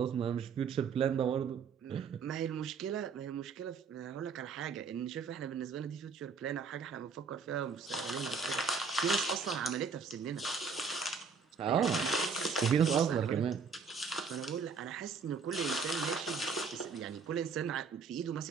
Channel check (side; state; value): left; quieter; 5.4 dB